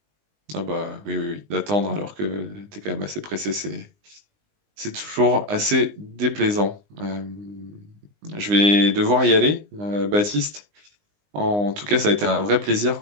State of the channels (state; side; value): late; left; 20 ms